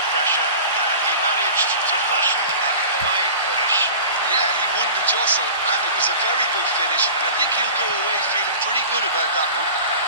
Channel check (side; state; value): both; inverted; correlation -0.38